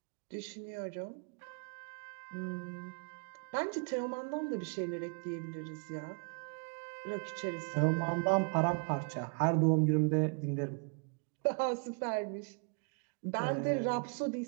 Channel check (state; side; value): quieter; left; 38.2 dB